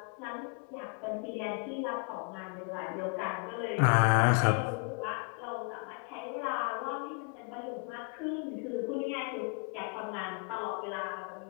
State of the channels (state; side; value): quieter; right; 36.8 dB